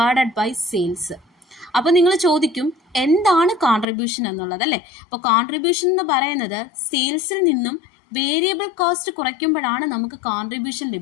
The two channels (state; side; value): drops out; right; at 3.9 s